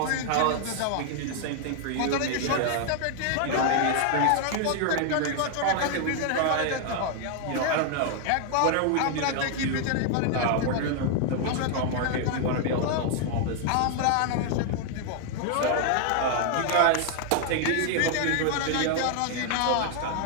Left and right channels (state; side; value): different; both; correlation 0.00